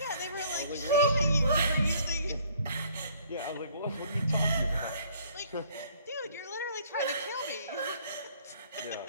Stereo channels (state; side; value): inverted; both; correlation -0.59